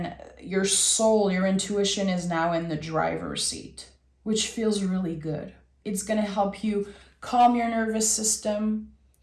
your soul, your intuition is now in the driver's seat, which feels really good. It's going to help you calm your nervous system.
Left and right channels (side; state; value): both; identical; correlation 1.00